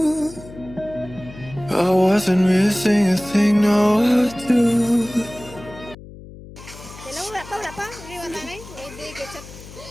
I wasn't missing a thing, no I do. Hello, wala pa. Hindi wala na eh. Hindi, get up.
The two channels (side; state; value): left; noise; hum, 17 dB below the sound